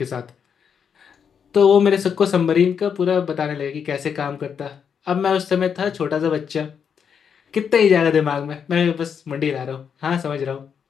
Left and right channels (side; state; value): right; quieter; 7.2 dB